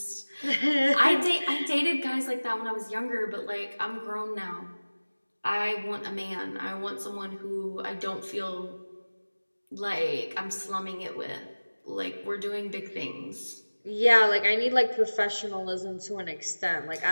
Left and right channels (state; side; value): inverted; both; correlation -1.00